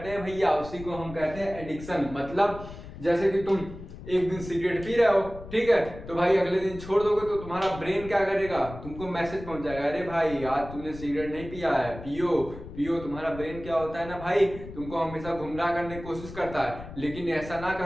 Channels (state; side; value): noise; left; rumble, 13 dB below the sound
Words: हैं भैया, उसी को हम कहते हैं एडिक्शन। मतलब जैसे कि तुम एक दिन सिगरेट पी रहे हो, ठीक है, तो भाई अगले दिन छोड़ दोगे तो तुम्हारा ब्रेन क्या करेगा, तुमको मैसेज पहुंच जाएगा, अरे भाई आज तुमने सिगरेट नहीं पिया है, पियो पियो। तुम्हारा ब्रेन क्या होता है ना भाई, तुमको हमेशा गुमराह करने की कोशिश करता है, लेकिन ऐसा ना